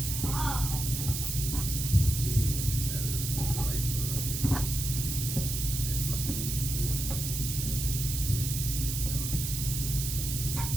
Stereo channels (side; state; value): right; noise; hiss, 3 dB below the sound